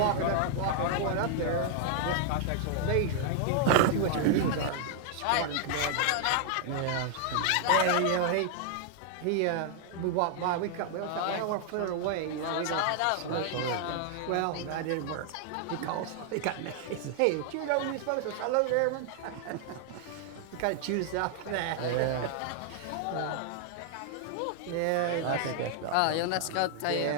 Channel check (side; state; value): both; different; correlation 0.00